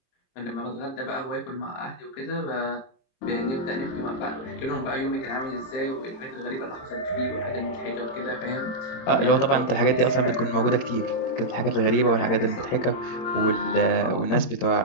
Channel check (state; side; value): late; right; 22 ms